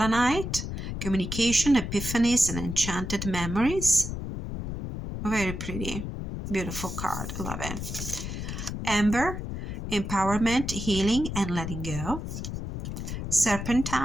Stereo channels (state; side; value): noise; left; rumble, 6 dB below the sound